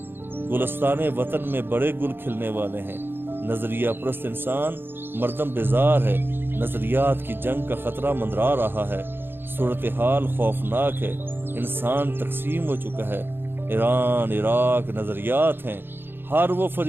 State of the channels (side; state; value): left; late; 0.10 ms